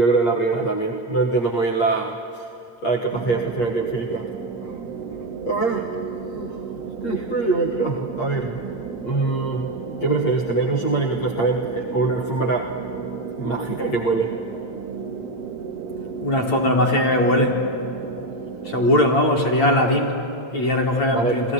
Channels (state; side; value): late; right; 8.7 ms